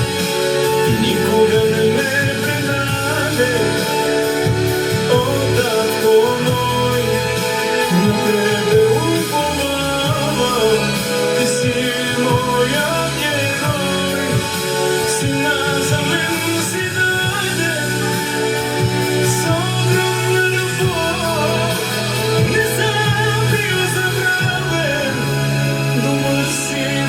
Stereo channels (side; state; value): both; identical; correlation 1.00